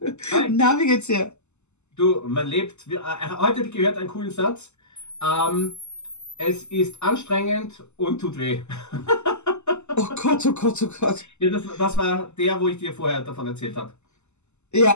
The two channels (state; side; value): late; right; 0.83 ms